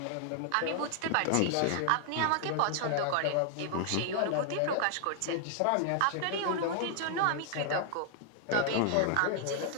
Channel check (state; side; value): different; both; correlation 0.00